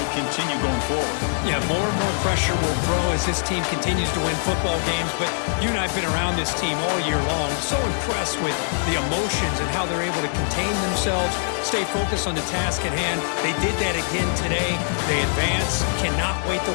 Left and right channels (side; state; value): right; silent; digital silence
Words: continue going forward. Yeah, more and more pressure will grow as this team continues to win football games, but you and I have been around this team all year long. So impressed with the emotions and how they're able to contain themselves, stay focused on the task at hand. They did that again today. They advance. Cannot wait to